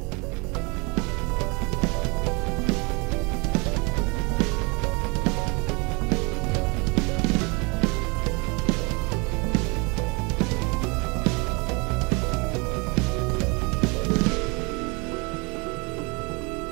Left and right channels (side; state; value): left; quieter; 29.2 dB